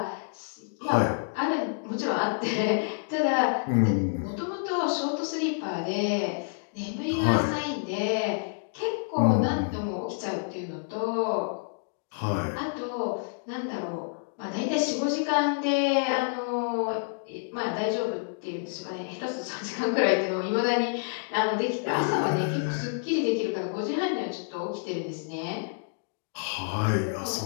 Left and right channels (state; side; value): silent; right; digital silence